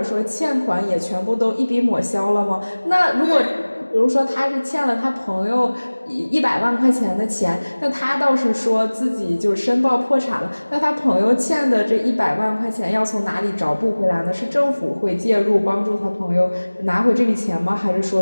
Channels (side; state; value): both; inverted; correlation -1.00